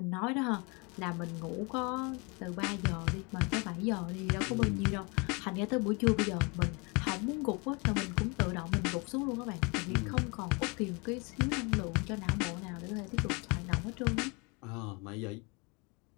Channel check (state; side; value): quieter; right; 29.9 dB